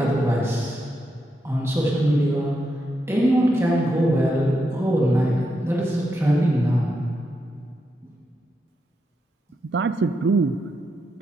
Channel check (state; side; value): normal; both; correlation 0.84